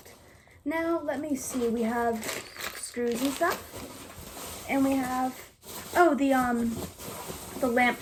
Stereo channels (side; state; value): both; identical; correlation 1.00